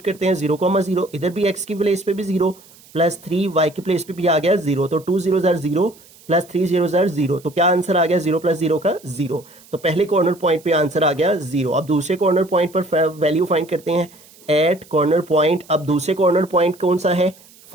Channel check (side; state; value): right; noise; hiss, 25 dB below the sound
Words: करते हैं 0,0, इधर भी x की प्लेस पे भी 0 प्लस 3y की प्लेस पे भी आ गया 0, तो 2 0 0 प्लस 3 0 0, तो क्या आंसर आ गया 0 प्लस 0 का 0, तो पहले कॉर्नर पॉइंट पे आंसर आ गया 0। अब दूसरे कॉर्नर पॉइंट पर वैल्यू फाइंड करते हैं एट कॉर्नर पॉइंट, अब दूसरे कॉर्नर पॉइंट कौन सा है